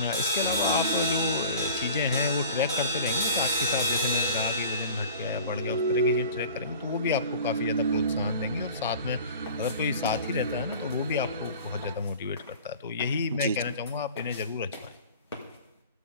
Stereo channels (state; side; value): inverted; both; correlation -0.43